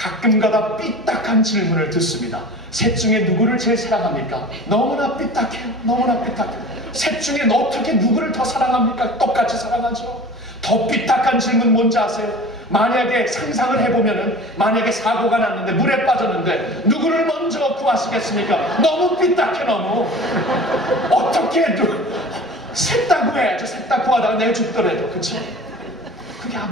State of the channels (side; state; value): both; normal; correlation 0.39